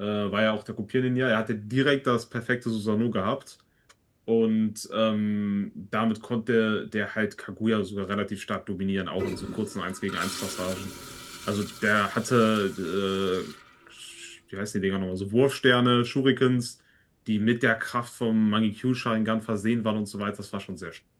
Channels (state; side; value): identical; both; correlation 1.00